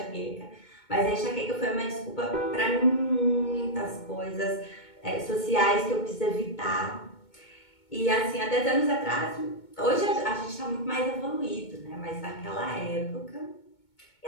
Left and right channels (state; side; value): late; right; 2.2 ms